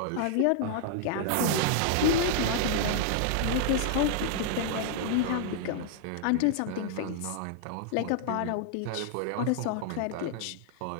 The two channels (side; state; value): both; different; correlation 0.00